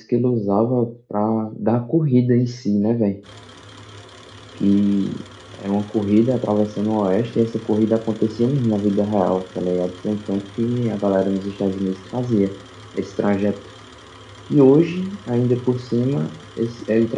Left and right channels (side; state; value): both; identical; correlation 1.00